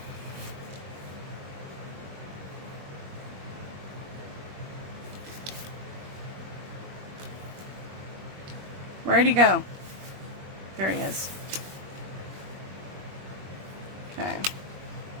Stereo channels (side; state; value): left; late; 21 ms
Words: Where'd he go? There he is. Okay.